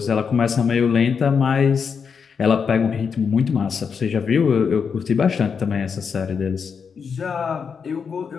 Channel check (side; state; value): right; quieter; 6.2 dB